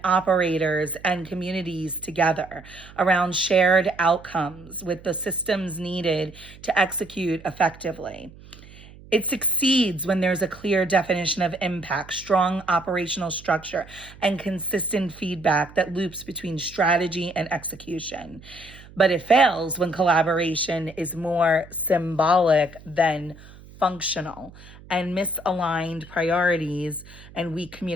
operators and communities together around shared outcomes with the systems needed to execute effectively. It succeeds when there's a clear definition of impact, strong operational structure, and consistent feedback that loops between strategy and execution. But it fails when collaboration is more symbolic than functional, and misaligned priorities and weak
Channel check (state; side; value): noise; right; hum, 20 dB below the sound